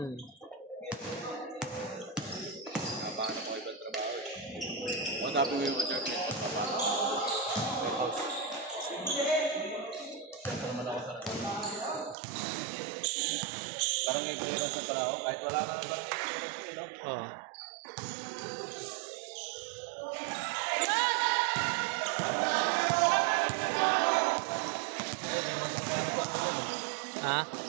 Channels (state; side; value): drops out; left; at 12.2 s